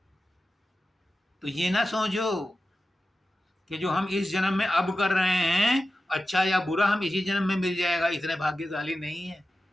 तो ये ना सोचो कि जो हम इस जन्म में अब कर रहे हैं अच्छा या बुरा हम इसी जन्म में मिल जाएगा, इतने भाग्यशाली नहीं है।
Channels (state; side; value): normal; both; correlation 0.93